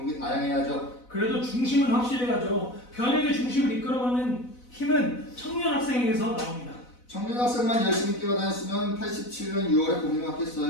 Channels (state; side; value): late; right; 4.0 ms